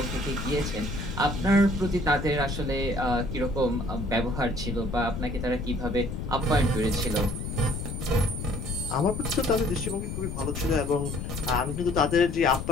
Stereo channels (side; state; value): left; noise; rumble, 5 dB below the sound